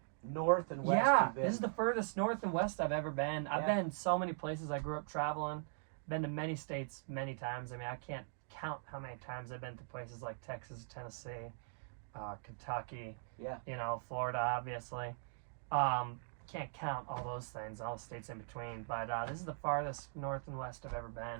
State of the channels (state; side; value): silent; left; digital silence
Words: north and west Yeah, you've been. this is the furthest north and west I've ever been. I've Yeah. been so many places. I grew up traveling. Been to many states many times. I mean, I can't count how many times I've been to places like Texas, Tennessee, Kentucky, Yeah. you know, Florida, obviously. Can't count all those things, all the states in between. But this is the farthest north and west I've ever